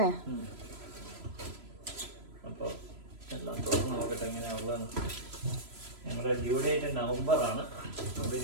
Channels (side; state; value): left; late; 3.0 ms